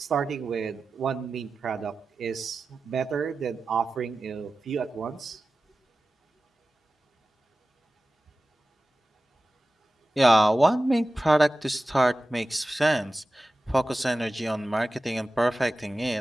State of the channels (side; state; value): both; normal; correlation 0.95